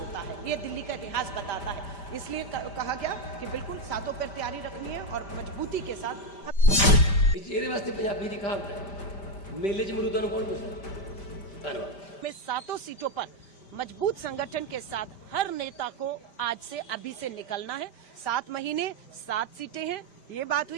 है, ये दिल्ली का इतिहास बताता है। इसलिए कहा गया कि बिल्कुल सातों पर तैयारी रखनी है और मजबूती के साथ। ਇਹਦੇ ਵਾਸਤੇ ਪੰਜਾਬੀ ਦੀ ਕਹਾਵਤ ਹੈ ਮੇਲੇ 'ਚ ਮਰੂਦਾਂ ਨੂੰ ਕੌਣ ਪੁੱਛਦਾ। ਧੰਨਵਾਦ। में 7 सीटों पर मजबूत संगठन के साथ हर नेता को आज से अभी से निकलना है। 7 महीने 7 सीटें हैं। ये बात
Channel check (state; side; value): late; right; 5.1 ms